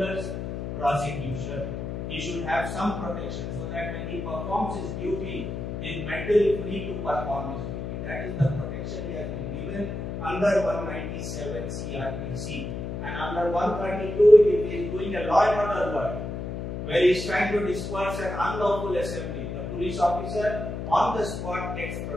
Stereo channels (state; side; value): noise; left; hum, 5 dB below the sound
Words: prosecution. He should have some protection so that when he performs his duty, he is mentally free to perform his duty. That is the protection he has been given under 197 CRPC. And under 132, if he is doing a law and order work, where he is trying to disperse an unlawful assembly, the police officer on the spot gets